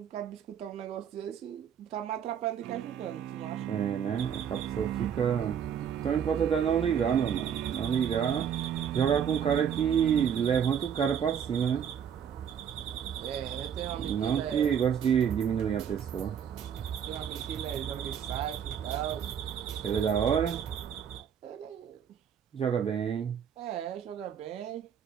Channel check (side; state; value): left; quieter; 8.2 dB